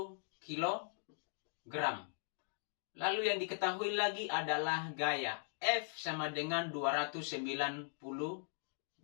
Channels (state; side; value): silent; right; digital silence